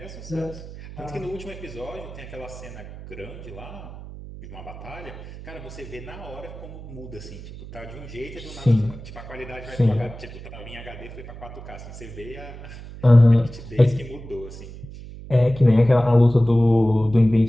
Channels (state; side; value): noise; right; hum, 14 dB below the sound